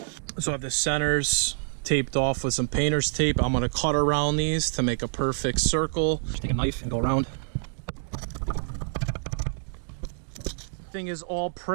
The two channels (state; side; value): silent; left; digital silence